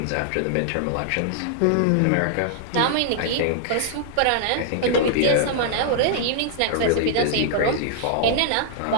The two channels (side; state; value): both; different; correlation -0.01